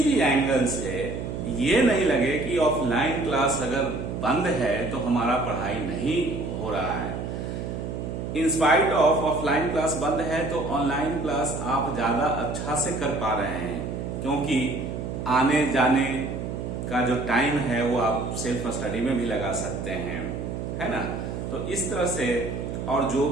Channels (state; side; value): noise; right; hum, 5 dB below the sound